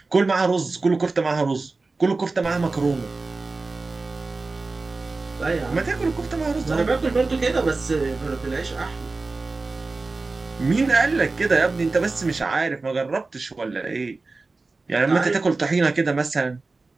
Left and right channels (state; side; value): quieter; left; 3.7 dB